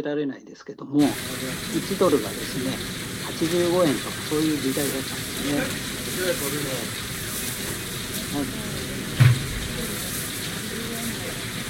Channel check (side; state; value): both; identical; correlation 1.00